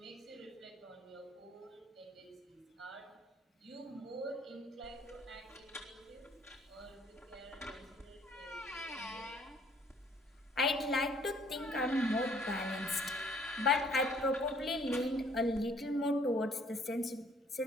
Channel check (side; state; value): both; normal; correlation 0.61